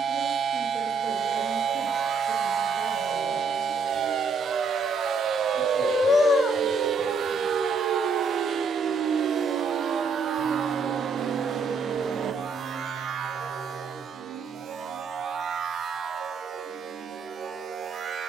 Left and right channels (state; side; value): quieter; left; 4.5 dB